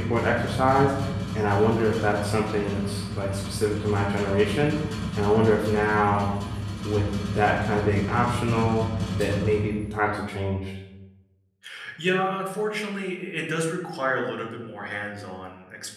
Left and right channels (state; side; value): identical; both; correlation 1.00